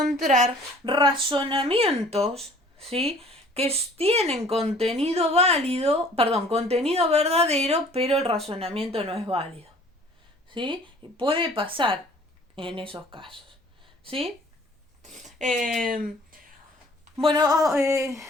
razonamientos, ¿sí?, que tienen contenido contenido verdadero, pero el razonamiento no es válido, ¿sí? Puede pasar en esos casos, ¿sí? Bueno,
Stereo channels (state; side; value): normal; both; correlation 0.53